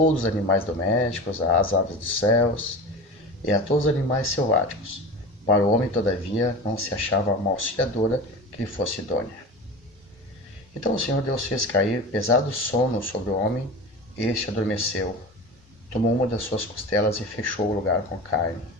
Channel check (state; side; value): normal; both; correlation 0.30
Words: os animais domésticos, às aves dos céus e a todos os animais selváticos. Para o homem, todavia, não se achava uma auxiliadora que lhe fosse idônea. Então o Senhor Deus fez cair pesado sono sobre o homem, e este adormeceu. Tomou uma das suas costelas e fechou o lugar com carne.